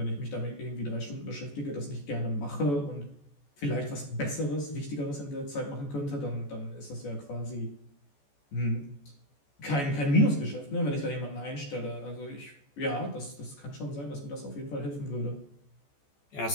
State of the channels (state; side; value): late; right; 14 ms